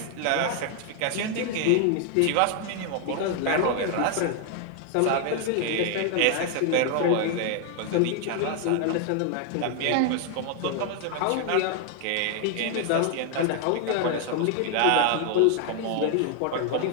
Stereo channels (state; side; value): different; both; correlation 0.00